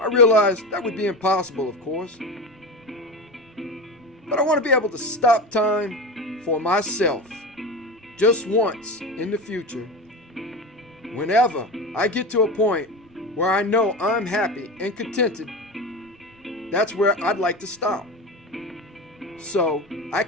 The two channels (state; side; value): normal; both; correlation 0.25